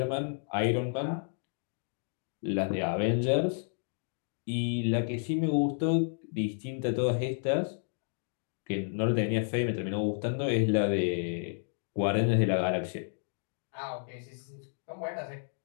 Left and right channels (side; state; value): right; silent; 57 dB below the other